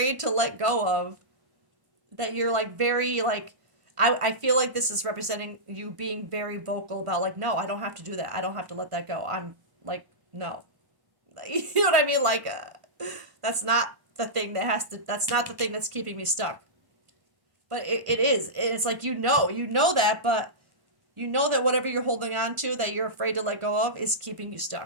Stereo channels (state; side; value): late; left; 1.5 ms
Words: to let go of. That you're like very like. I feel like this is representing you being very vocal about like, no, I don't have to do that. I don't have to let that go. I'm like, no. You know what I mean? Like, that's not the thing that's not the thing that's keeping me stuck. But it is. It's like, you know that, but you know that whatever you're holding on to that you're afraid to let go of is keeping you